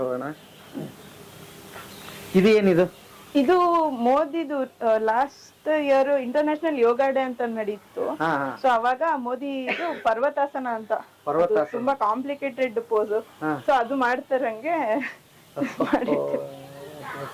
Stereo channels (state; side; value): identical; both; correlation 1.00